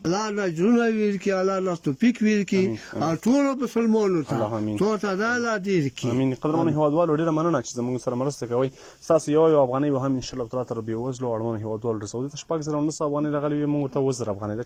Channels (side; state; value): both; identical; correlation 1.00